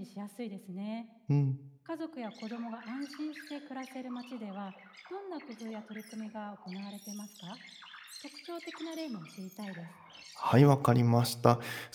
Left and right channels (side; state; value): both; identical; correlation 1.00